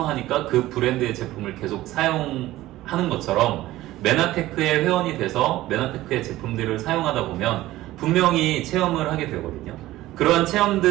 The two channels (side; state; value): left; quieter; 16.2 dB